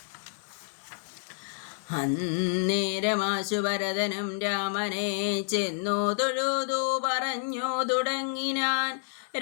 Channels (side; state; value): right; silent; digital silence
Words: അന്നേരമാശു ഭരതനും രാമനെ ചെന്നു തൊഴുതു പറഞ്ഞു തുടങ്ങിനാൻ.